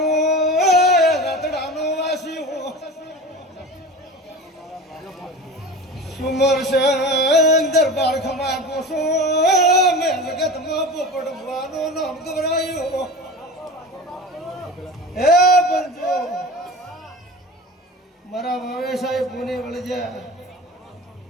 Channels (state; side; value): normal; both; correlation 0.33